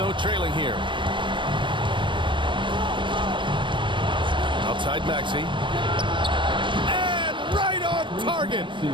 trailing here. Outside Maxey. And right on target.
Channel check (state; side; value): late; left; 0.24 ms